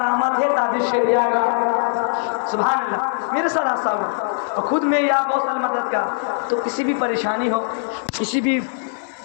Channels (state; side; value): silent; right; digital silence